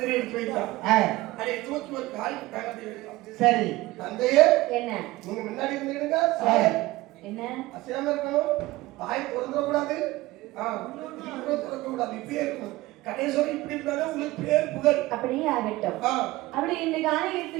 தேடி எடுத்து வைத்தான். அதை தூக்கி ஒரு கால் தகத்தை வைத்தான். சரி. தந்தையே, என்ன நீங்க முன்னாடி இருந்துடுங்க. என்ன அசையாம இருக்கணும். தாய் திறந்துடக்கூடாது. திறக்கக்கூடாது. இப்படியே இருக்கணும். கடைசிவரை இப்படி இருந்தாலும் உங்களுக்கு பேர் புகழ். அப்படியே ஆகட்டும். அப்படி இந்த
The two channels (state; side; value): quieter; left; 18.8 dB